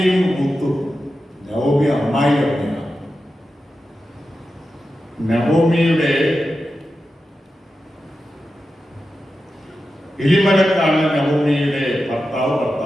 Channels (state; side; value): normal; both; correlation 0.91